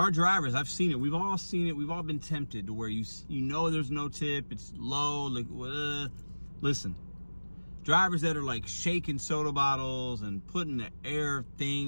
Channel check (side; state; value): both; inverted; correlation -1.00